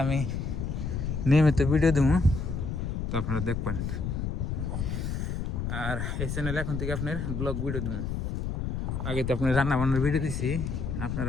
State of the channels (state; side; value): noise; left; rumble, 2 dB below the sound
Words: আমি নিয়মিত ভিডিও দেবো, তো আপনারা দেখবেন। আর এই চ্যানেলে এখন থেকে আপনার ব্লগ ভিডিও দেবো। আগে তো আপনার রান্না বান্নার ভিডিও দিছি,